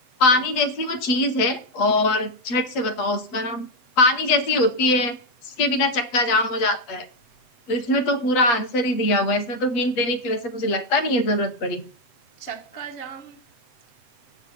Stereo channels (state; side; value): late; right; 7.8 ms